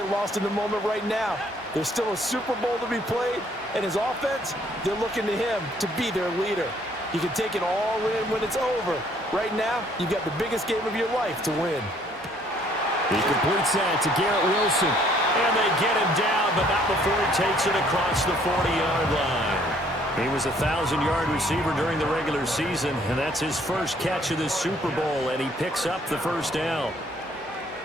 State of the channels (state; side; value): normal; both; correlation 0.63